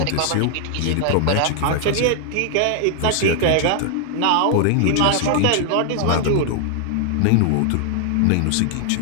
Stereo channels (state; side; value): different; both; correlation 0.00